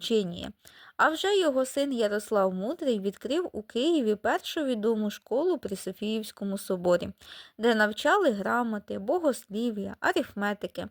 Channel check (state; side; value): identical; both; correlation 1.00